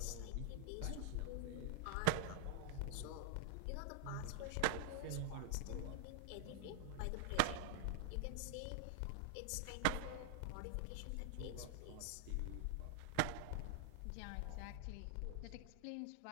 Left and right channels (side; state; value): both; different; correlation 0.00